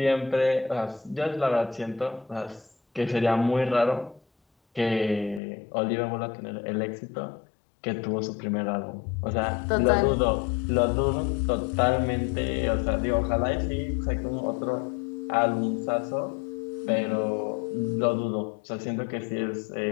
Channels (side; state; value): right; drops out; at 5.4 s